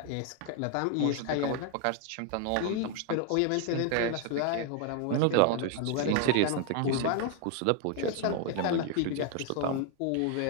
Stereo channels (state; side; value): different; both; correlation 0.00